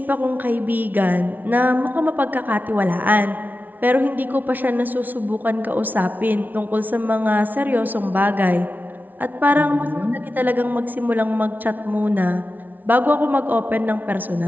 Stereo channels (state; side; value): late; left; 0.082 ms